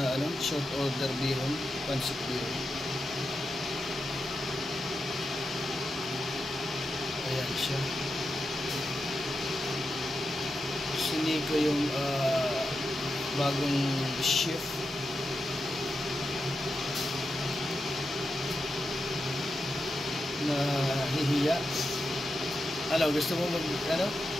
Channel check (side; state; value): both; normal; correlation 0.88